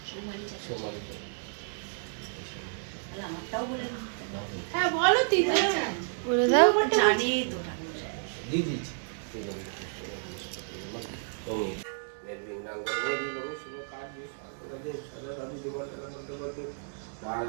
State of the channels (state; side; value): silent; left; 57 dB below the other